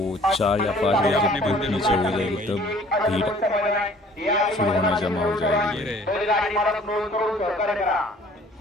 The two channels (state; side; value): normal; both; correlation 0.54